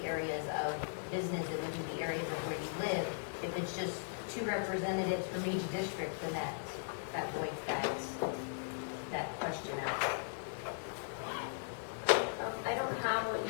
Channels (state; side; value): silent; right; digital silence